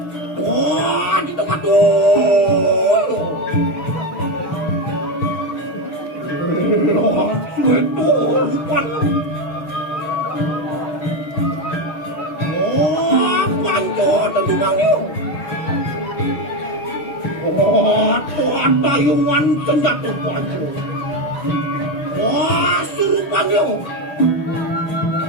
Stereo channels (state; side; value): late; right; 6.7 ms